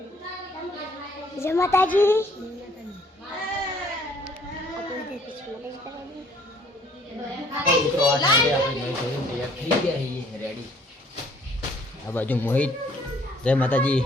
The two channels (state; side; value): normal; both; correlation 0.60